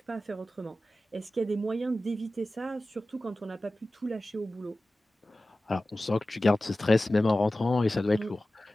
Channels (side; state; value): both; normal; correlation 0.96